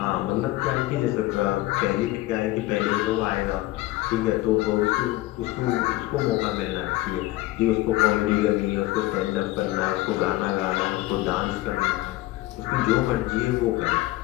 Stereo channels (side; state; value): right; quieter; 17.7 dB